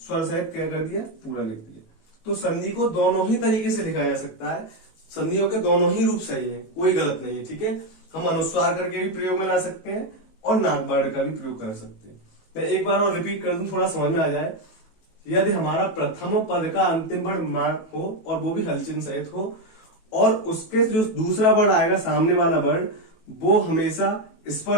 सहित क्या कर दिया, पूरा लिख दिया। तो संधि को दोनों ही तरीके से लिखा जा सकता है, संधियों के दोनों ही रूप सही है, कोई गलत नहीं है, ठीक है। हम अनुस्वार करके भी प्रयोग में ला सकते हैं और नाक वर्ड का भी प्रयोग कर सकते हैं। मैं एक बार और रिपीट कर दूं, थोड़ा समझ में आ जाए। यदि हमारा प्रथम पद का अंतिम वर्ण मां हो और वो भी हलचिन्ह सहित हो, और उसके जो दूसरा वर्ण आएगा सामने वाला वर्ण, वो हमेशा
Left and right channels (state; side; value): late; right; 18 ms